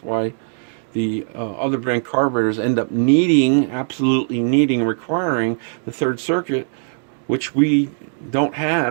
why the other brand carburetors end up absolutely needing, requiring the third circuit, which we don't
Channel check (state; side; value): silent; left; digital silence